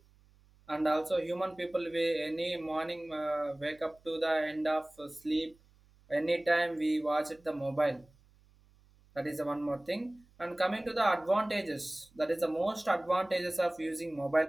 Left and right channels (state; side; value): noise; right; hum, 30 dB below the sound